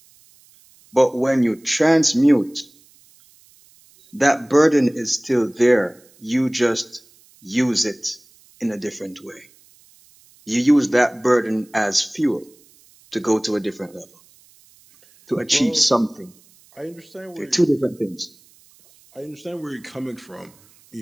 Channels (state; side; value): noise; right; hiss, 29 dB below the sound